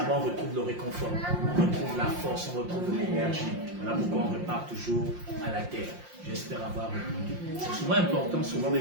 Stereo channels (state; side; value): late; left; 5.7 ms